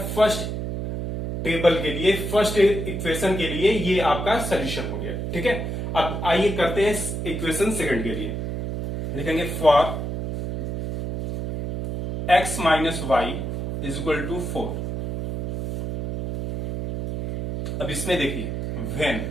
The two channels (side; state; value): right; noise; hum, 4 dB below the sound